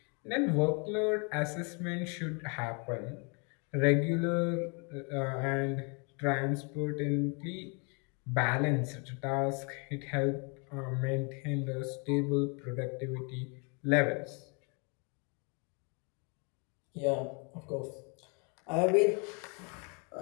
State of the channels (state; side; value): quieter; right; 34.6 dB